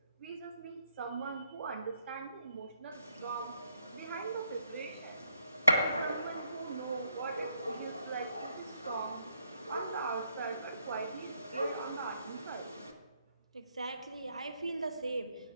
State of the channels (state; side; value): inverted; both; correlation -0.75